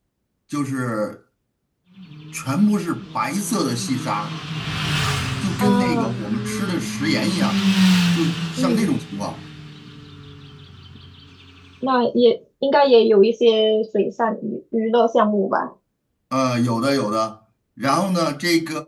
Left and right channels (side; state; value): both; identical; correlation 1.00